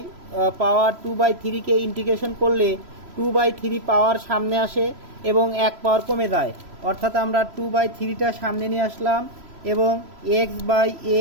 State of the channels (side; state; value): left; late; 3.0 ms